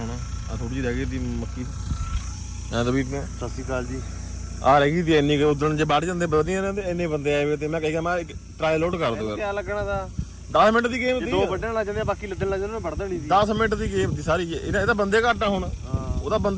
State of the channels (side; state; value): both; identical; correlation 1.00